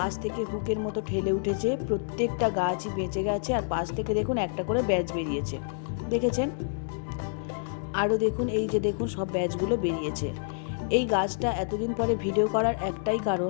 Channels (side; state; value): right; silent; digital silence